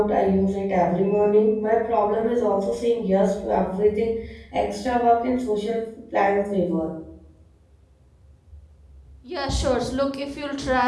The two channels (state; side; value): identical; both; correlation 1.00